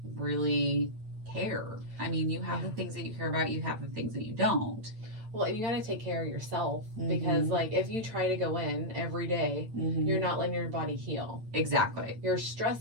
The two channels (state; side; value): late; left; 8.9 ms